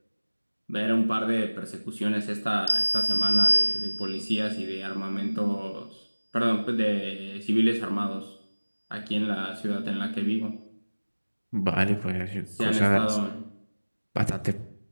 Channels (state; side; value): inverted; both; correlation -1.00